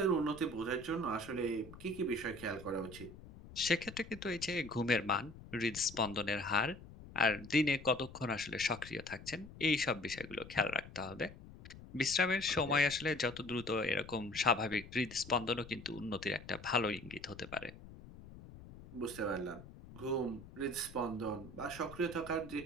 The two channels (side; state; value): left; noise; rumble, 16 dB below the sound